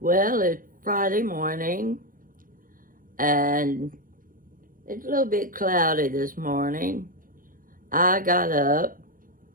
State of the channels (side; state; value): left; late; 0.40 ms